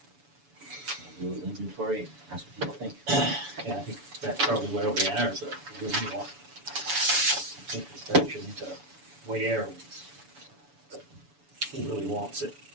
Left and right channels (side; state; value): left; late; 7.0 ms